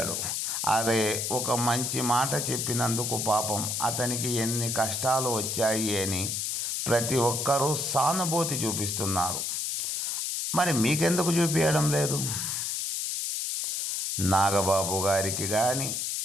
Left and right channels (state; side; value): noise; left; hiss, 1 dB below the sound